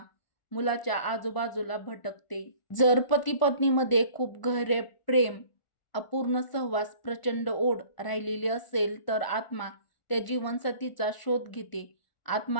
मुलाच्या आजूबाजूला भटकते. जर पती-पत्नीमध्ये खूप गहरे प्रेम, अपूर्ण सहवास, प्रचंड ओढ राहिलेली असेल तर आत्मा त्या जीवनसाथीचा शोध घेते.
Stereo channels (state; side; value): late; right; 1.4 ms